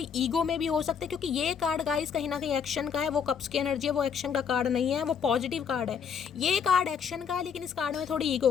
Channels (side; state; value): right; quieter; 7.0 dB